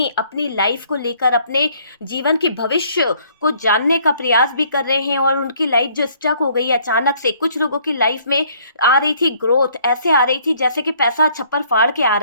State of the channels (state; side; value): inverted; both; correlation -0.62